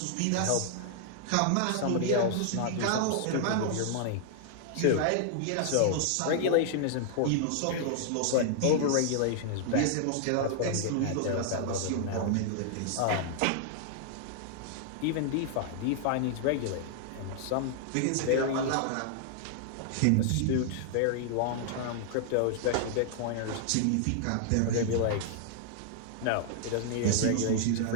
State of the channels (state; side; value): different; both; correlation -0.01